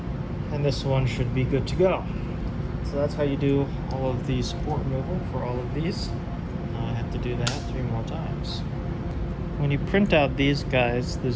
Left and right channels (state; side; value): identical; both; correlation 1.00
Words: And this one should be good to go. So that's how you do all of the support removal for all of these. I have to do that 3 more times. When you print out these guys, the